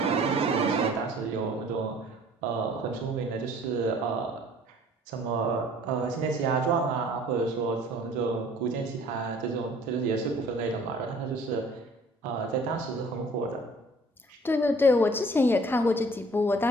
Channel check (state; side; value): normal; both; correlation 0.53